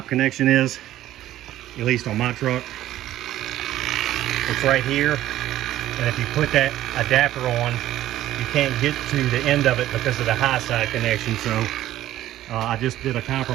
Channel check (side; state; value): left; quieter; 13.8 dB